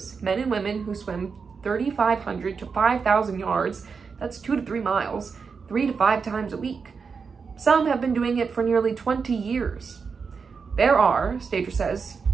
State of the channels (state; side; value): quieter; left; 5.4 dB